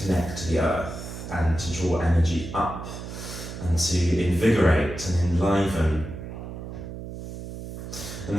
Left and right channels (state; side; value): noise; right; hum, 9 dB below the sound